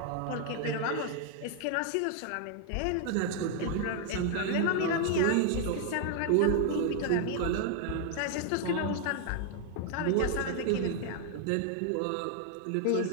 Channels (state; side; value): different; both; correlation 0.00